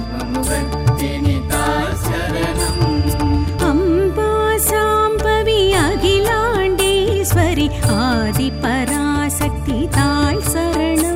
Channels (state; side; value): identical; both; correlation 1.00